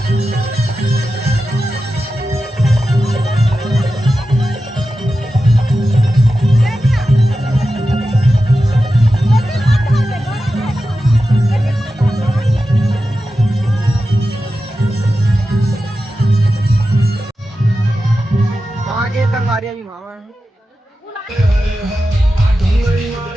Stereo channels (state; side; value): normal; both; correlation 0.92